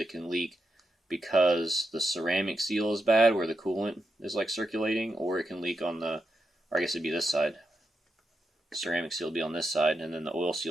can leak because the ceramic seal is bad, where the coolant is like circulating, or it can leak on the, or I guess it'd be this side. The ceramic seal will be on this side, and then the oil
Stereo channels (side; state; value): both; normal; correlation 0.85